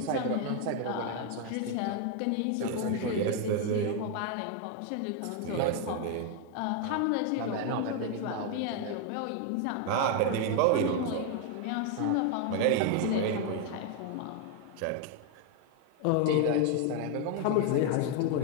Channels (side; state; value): both; different; correlation 0.01